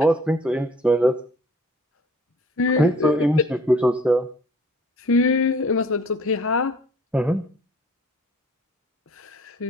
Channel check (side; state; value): both; normal; correlation 0.53